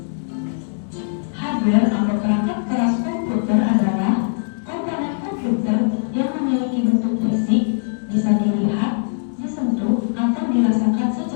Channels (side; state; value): right; silent; digital silence